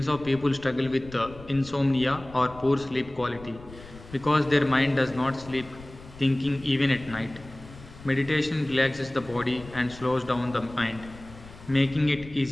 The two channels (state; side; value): noise; left; rumble, 18 dB below the sound